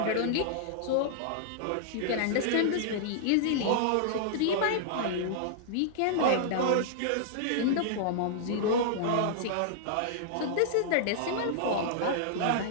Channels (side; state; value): both; different; correlation -0.01